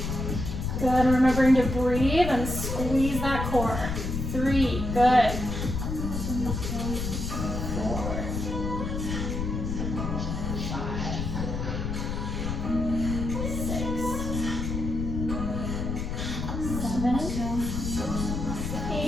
Good, remembering to breathe and squeeze that core. 3, good. 4, 5, 6, 7,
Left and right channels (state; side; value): noise; left; rumble, 3 dB below the sound